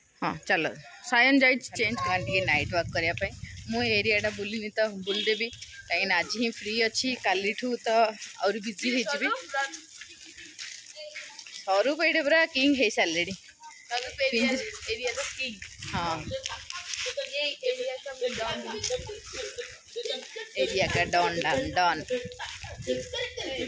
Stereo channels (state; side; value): identical; both; correlation 1.00